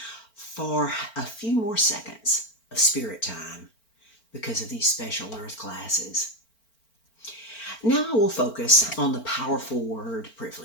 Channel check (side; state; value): right; late; 4.4 ms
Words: for a few more seconds of spirit time because of these special earth classes. Now I will focus on the powerful word